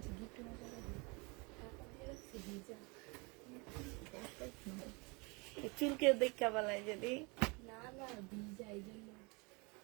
চুলকে দেখা বলায় যদি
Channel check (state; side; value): quieter; left; 29.2 dB